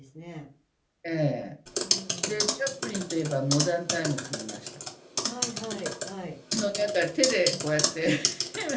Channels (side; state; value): both; identical; correlation 1.00